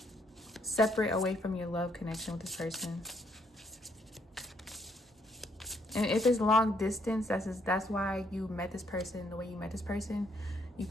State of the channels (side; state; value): both; normal; correlation 0.72